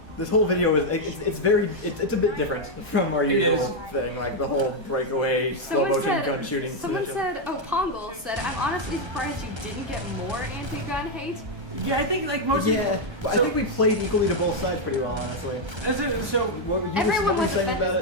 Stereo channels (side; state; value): left; late; 1.3 ms